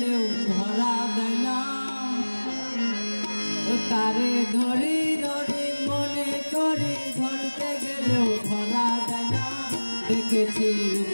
ধরা দেয় না। তারে ধরি ধরি মনে করি ধরতে গেলেও ধরা দেয় না। দেখেছি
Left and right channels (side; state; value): both; inverted; correlation -1.00